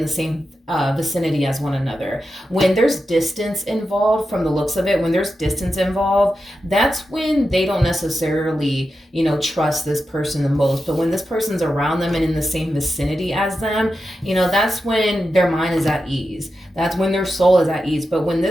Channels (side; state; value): both; normal; correlation 0.90